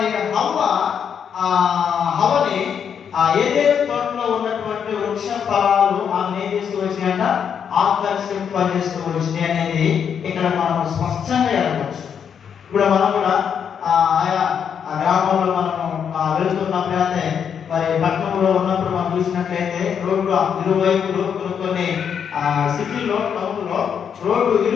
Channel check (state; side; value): quieter; right; 7.6 dB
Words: హవ్వని ఏదైతే తోటలో ఉన్నటువంటి వృక్ష ఫలాలు ఆమె ఏం చేస్తూ వచ్చినాయంట, ఆకర్షింపజేస్తూ వచ్చినాయి అనేది ఇక్కడ మనం స్పష్టంగా ఎరగవచ్చు. ఇప్పుడు మనం కూడా ఆయా గ్రామంలో మనము వెళ్తున్నప్పుడు అయితే మరి పట్టణంలో ఉన్నప్పుడు మనం చూసినట్లయితే రోడ్డు ఇరువైపులు కొన్ని సిటీలో టౌన్లో రోడ్డు